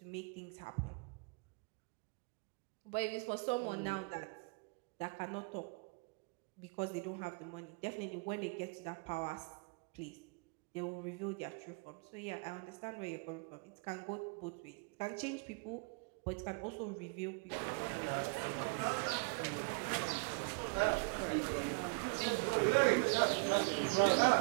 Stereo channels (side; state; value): left; quieter; 33.2 dB